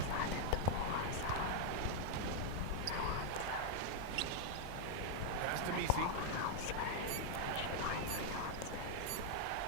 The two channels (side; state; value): both; different; correlation 0.00